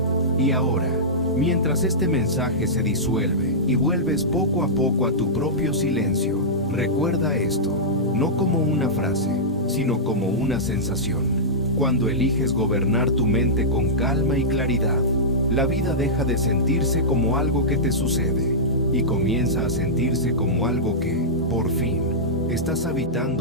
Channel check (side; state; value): both; normal; correlation -0.13